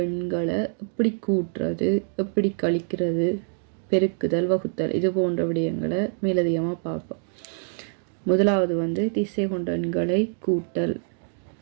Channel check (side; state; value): left; silent; digital silence